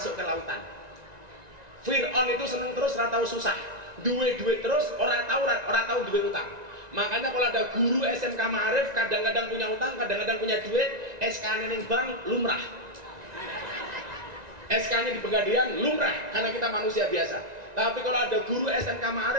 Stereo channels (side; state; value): left; late; 1.9 ms